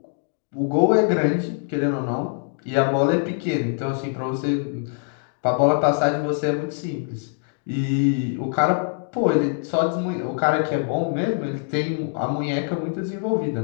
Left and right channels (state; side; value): silent; right; digital silence